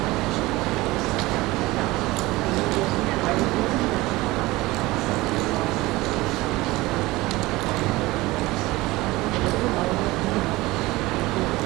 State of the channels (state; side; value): quieter; left; 20.1 dB